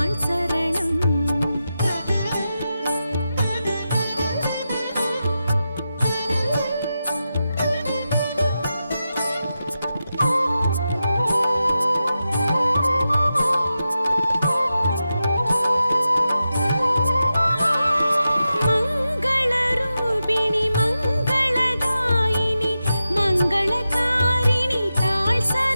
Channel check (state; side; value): inverted; both; correlation -0.90